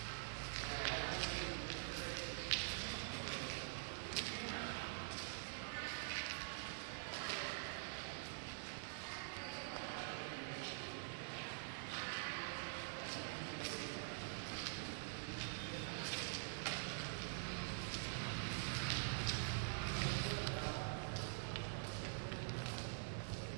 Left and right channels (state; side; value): silent; left; digital silence